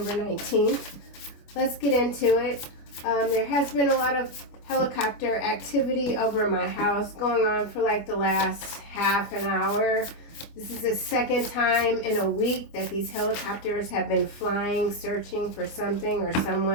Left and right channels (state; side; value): late; right; 25 ms